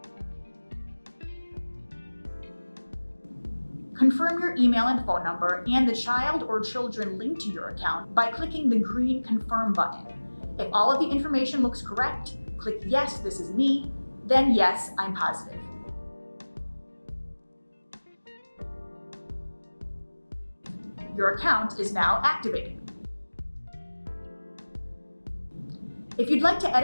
Confirm your email and phone number and the child or children linked to your account by clicking the green Confirm button. If all of the information looks correct, click Yes, this is me, then Yes, I'm positive. Your account is now activated. If you'd like to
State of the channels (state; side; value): inverted; both; correlation -1.00